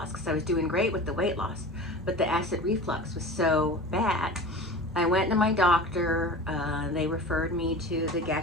because I was doing great with the weight loss, but the acid reflux was so bad. I went to my doctor. They referred me to the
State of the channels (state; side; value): normal; both; correlation 0.35